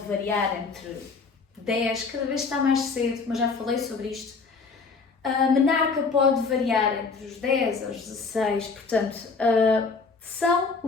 variar entre 10, cada vez está mais cedo, mas já falei sobre isto. A menarca pode variar entre os 10 aos 16, portanto, são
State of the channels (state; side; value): quieter; right; 4.6 dB